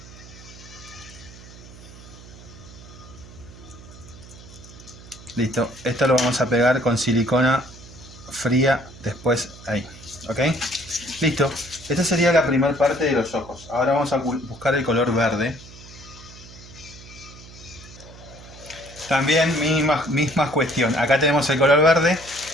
Listo, esto lo vamos a pegar con silicona fría después ahí, ¿ok? Listo, esta sería la primera parte de los ojos. Ahora vamos a buscar el color verde. También misma cuestión, acá tenemos el color verde,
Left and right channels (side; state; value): right; noise; hum, 18 dB below the sound